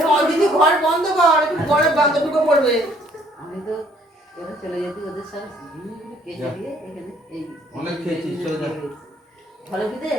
অলরেডি ঘর বন্ধ কর একটু ঘরে বন্ধ ঢুকে পড়বে আমি তো এবার চলে যেতে ওদের সাথে কেটে দিয়ে এখানে এই অনেক খেয়েছিস চলে যা ভালো বিদে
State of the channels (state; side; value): normal; both; correlation 0.62